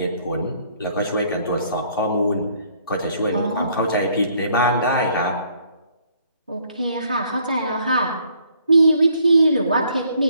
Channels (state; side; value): inverted; both; correlation -0.64